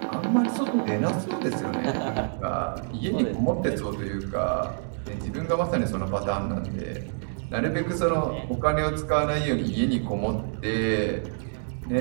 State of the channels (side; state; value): left; silent; digital silence